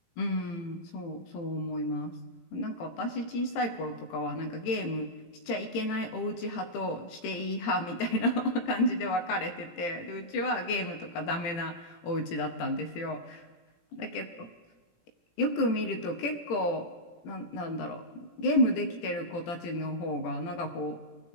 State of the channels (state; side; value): late; right; 18 ms